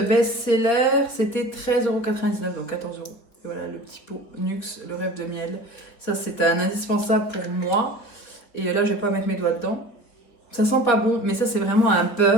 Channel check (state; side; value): late; right; 4.5 ms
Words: c'était 13,99 €, donc 14 €. Et voilà, le petit pot Nuxe, le rêve de miel. Ça, c'est un indispensable pour moi. Et là, je vais pas mettre mes doigts dedans. Ça sent pas bon, mais ça, c'est vraiment un